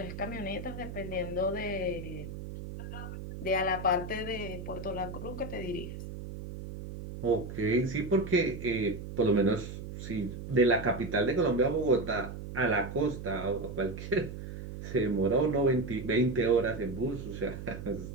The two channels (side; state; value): right; noise; hum, 9 dB below the sound